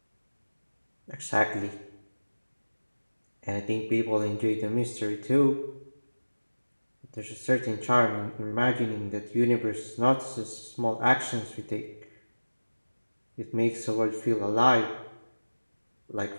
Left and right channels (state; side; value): inverted; both; correlation -1.00